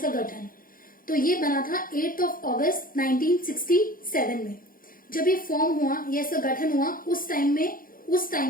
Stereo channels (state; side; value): late; right; 0.41 ms